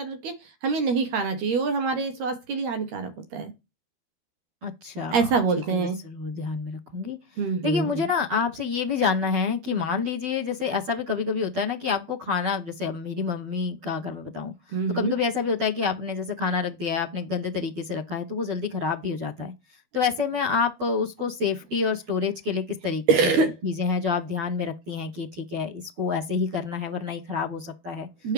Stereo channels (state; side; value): late; left; 12 ms